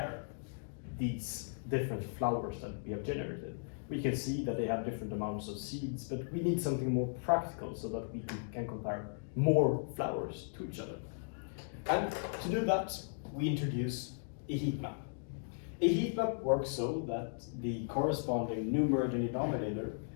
these different flowers that we have generated? We can see that they have different amounts of seeds, but we need something more practical so that we can compare more flowers to each other. And to do that, we introduce a heat map. A heat map works so that the corresponding numerator and denominator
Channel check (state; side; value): silent; right; digital silence